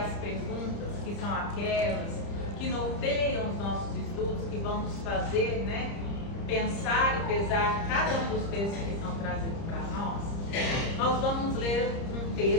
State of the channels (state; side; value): late; right; 30 ms